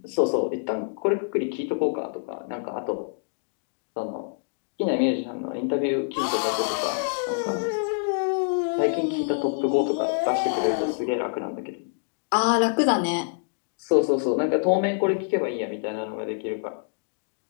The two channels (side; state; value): right; silent; digital silence